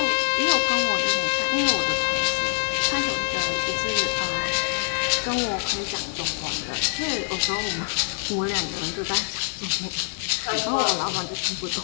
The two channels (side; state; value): right; silent; digital silence